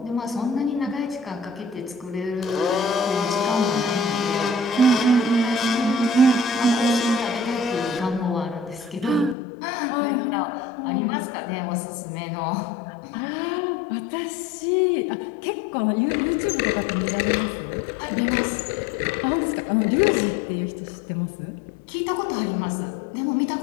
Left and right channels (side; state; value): right; drops out; at 9.3 s